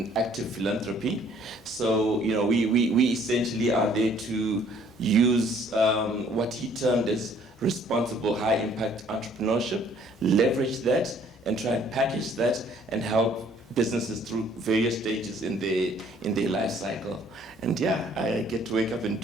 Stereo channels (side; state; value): both; normal; correlation 0.60